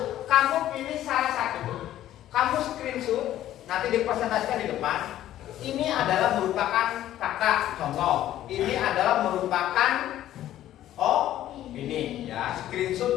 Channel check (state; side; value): quieter; right; 12.9 dB